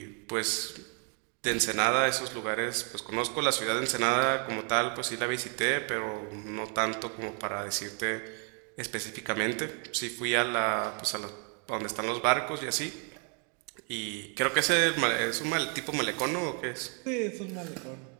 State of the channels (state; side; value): quieter; left; 38.9 dB